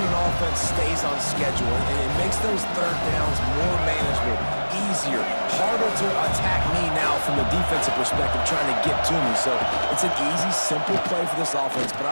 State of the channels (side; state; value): both; inverted; correlation -1.00